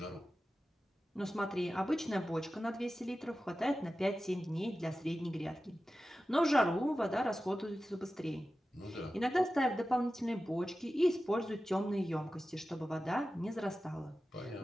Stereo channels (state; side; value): normal; both; correlation 0.94